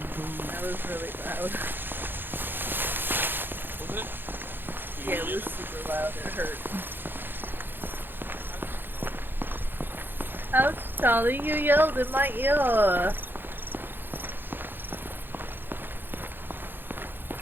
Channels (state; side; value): late; left; 0.098 ms